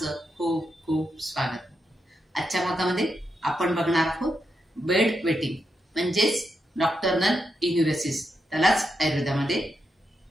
खूप खूप स्वागत. आजच्या भागामध्ये आपण बघणार आहोत बेड वेटिंग म्हणजेच नॉक्टर्नल इन्युरेसिस, त्यालाच आयुर्वेदामध्ये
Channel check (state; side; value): normal; both; correlation 0.84